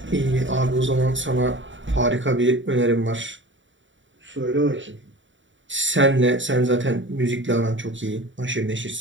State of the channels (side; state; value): left; late; 0.55 ms